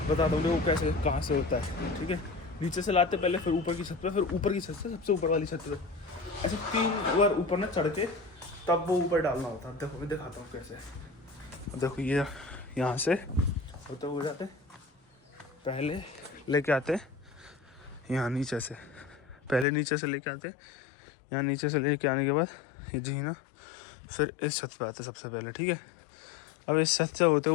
बताता हूँ वो कैसे कहाँ से होता है, ठीक है। नीचे से लाते पहले, फिर ऊपर की छत पे, फिर ऊपर की छत से सबसे ऊपर वाली छत पे, ऐसे 3 बार ऊपर ना चढ़ के तब वो ऊपर डालना होता है। देखो मैं दिखाता हूँ कैसे। अब देखो ये यहाँ से होते हो जाते, पहले लेके आते यहाँ नीचे से, पहले नीचे से लेके आते यहाँ, नीचे से लेके आने के बाद ये जी ना, फिर इस छत पे आते सबसे पहले, ठीक है। अब इस छत से होते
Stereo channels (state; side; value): drops out; right; at 19.7 s